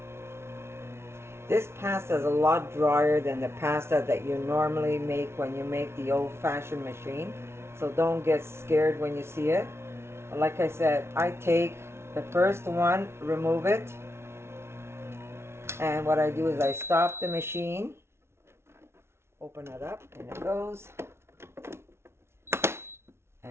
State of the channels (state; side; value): late; left; 0.12 ms